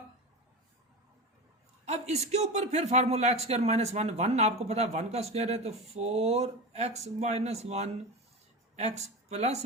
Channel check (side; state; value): both; normal; correlation 0.24